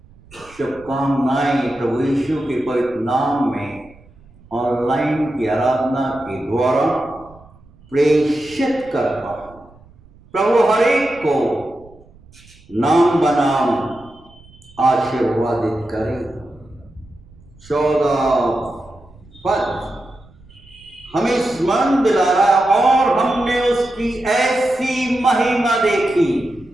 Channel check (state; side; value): noise; right; rumble, 26 dB below the sound